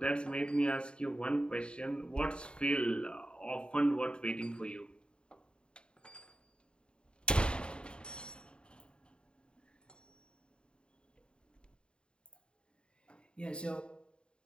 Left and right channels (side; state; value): right; late; 0.052 ms